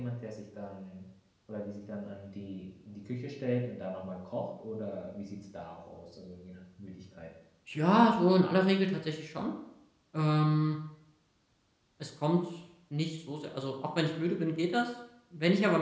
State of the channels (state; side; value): identical; both; correlation 1.00